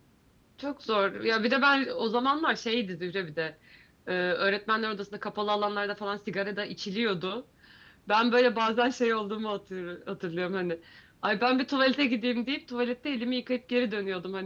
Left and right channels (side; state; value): both; identical; correlation 1.00